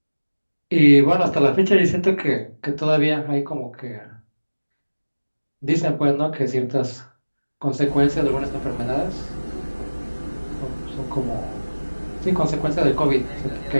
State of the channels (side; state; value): both; inverted; correlation -1.00